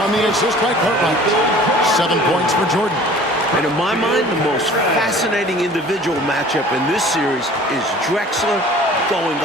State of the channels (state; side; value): normal; both; correlation 0.47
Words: the assist by Cartwright. 7 points for Jordan. And in my mind, the most fascinating individual matchup in this series is Drexler going